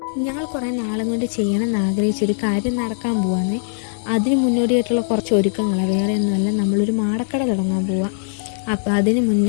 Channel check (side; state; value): right; silent; digital silence